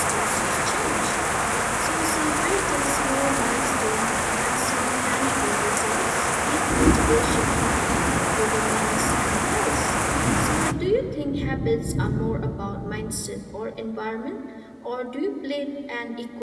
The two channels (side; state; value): both; identical; correlation 1.00